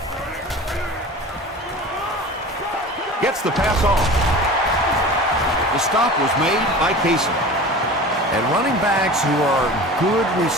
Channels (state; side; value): normal; both; correlation 0.37